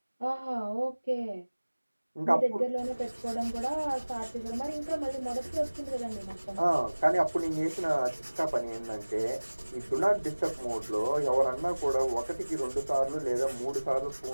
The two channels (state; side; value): inverted; both; correlation -1.00